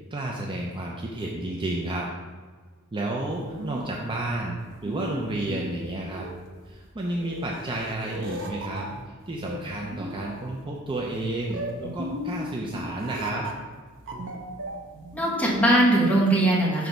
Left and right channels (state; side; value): normal; both; correlation 0.57